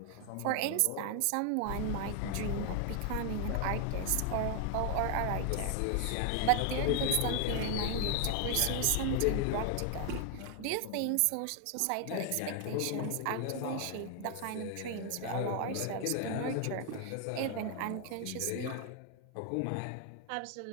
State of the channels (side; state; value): both; different; correlation 0.00